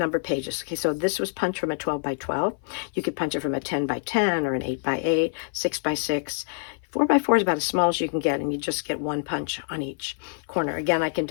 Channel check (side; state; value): right; silent; 55 dB below the other